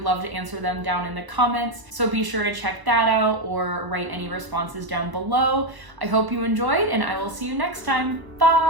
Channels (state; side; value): late; left; 1.0 ms